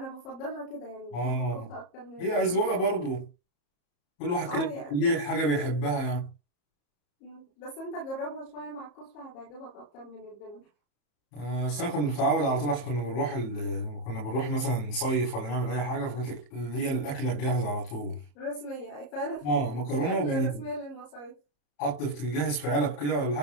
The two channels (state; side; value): late; right; 34 ms